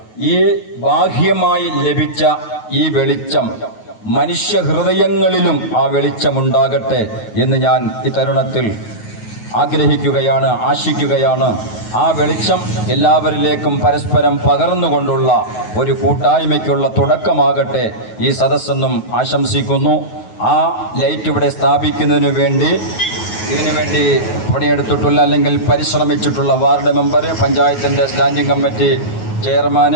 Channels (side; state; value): right; late; 9.4 ms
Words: ഈ ബാഹ്യമായി ലഭിച്ച ഈ വെളിച്ചം മനുഷ്യ ഹൃദയങ്ങളിലും ആ വെളിച്ചമുണ്ടാകട്ടെ എന്ന് ഞാൻ ഈ തരുണത്തിൽ ആഗ്രഹിക്കുകയാണ്, ആശിക്കുകയാണ്. ആ വെളിച്ചം എല്ലാവരിലേക്കും പരസ്പരം പകർന്നുകൊണ്ടുള്ള ഒരു കൂട്ടായ്മയ്ക്കുള്ള തുടക്കമാകട്ടെ ഈ സദസ്സെന്നും ആശംസിക്കുന്നു. ആ ലൈറ്റ് ഇവിടെ സ്ഥാപിക്കുന്നതിന് വേണ്ടി ഇതിനുവേണ്ടി പണിയെടുത്തിട്ടുള്ള അല്ലെങ്കിൽ പരിശ്രമിച്ചിട്ടുള്ള വാർഡ് മെമ്പർ, പഞ്ചായത്തിൻ്റെ സ്റ്റാൻഡിംഗ് കമ്മിറ്റി